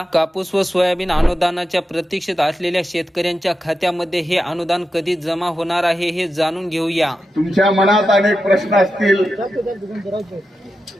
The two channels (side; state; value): both; normal; correlation 0.90